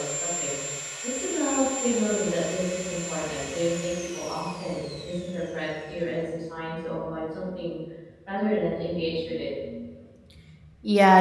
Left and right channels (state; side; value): identical; both; correlation 1.00